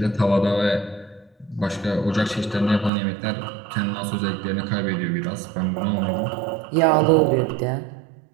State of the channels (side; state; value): left; drops out; at 2.9 s